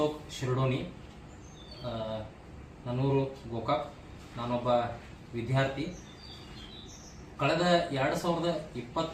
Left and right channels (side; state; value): both; identical; correlation 1.00